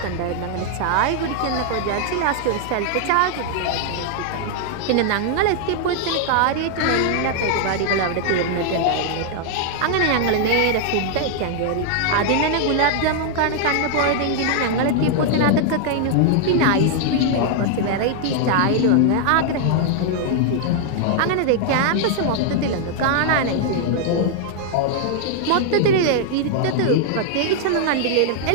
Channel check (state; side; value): different; both; correlation 0.00